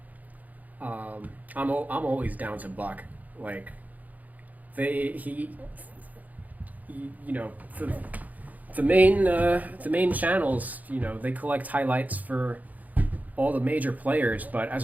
I'm always down to buck. Like, you know, the main channels, you know, they collect highlights for all the major players, but as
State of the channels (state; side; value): late; left; 0.078 ms